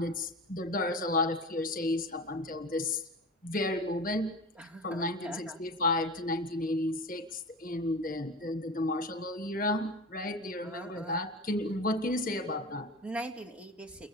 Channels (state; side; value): normal; both; correlation 0.30